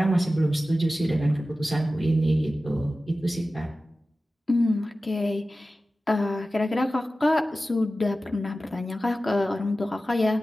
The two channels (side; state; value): both; normal; correlation 0.95